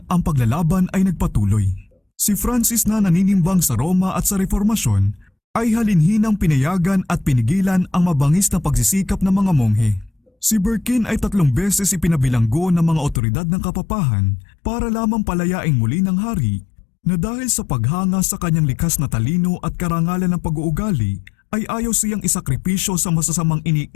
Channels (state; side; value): drops out; right; at 13.2 s